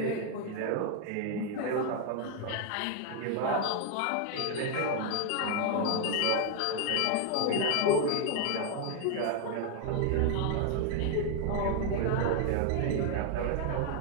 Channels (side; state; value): both; different; correlation 0.00